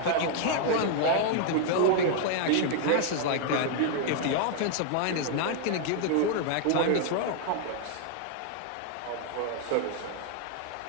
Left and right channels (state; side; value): different; both; correlation 0.00